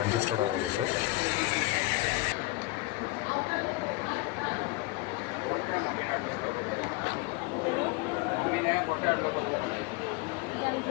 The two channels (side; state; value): right; quieter; 20.9 dB